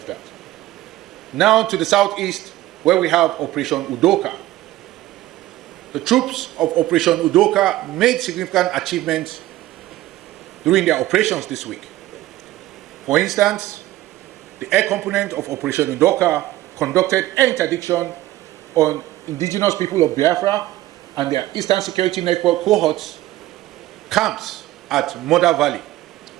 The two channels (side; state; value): left; quieter; 15.8 dB